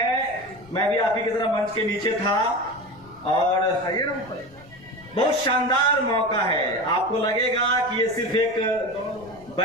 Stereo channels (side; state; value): left; noise; rumble, 24 dB below the sound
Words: मैं भी आप ही की तरह मंच के नीचे था और बहुत शानदार मौका है। आपको लगेगा कि ये सिर्फ एक